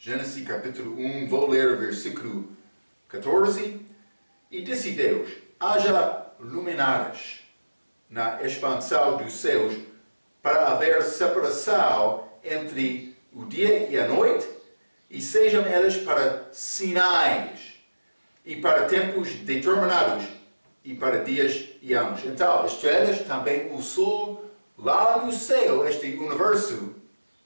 capítulo 1, vou ler o versículo 14. E disse Deus, haja luminares na expansão dos céus para haver separação entre o dia e a noite, e sejam elas para sinais e para tempos determinados e para dias e anos. Então, estrelas, também o sol, lá no céu, este universo,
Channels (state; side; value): inverted; both; correlation -1.00